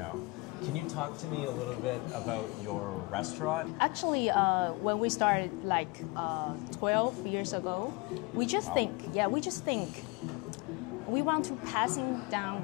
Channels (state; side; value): quieter; right; 25.6 dB